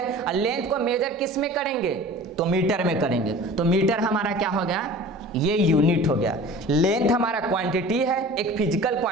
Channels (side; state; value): both; normal; correlation 0.41